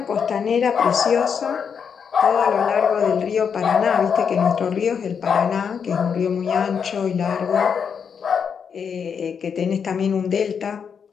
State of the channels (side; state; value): right; quieter; 6.8 dB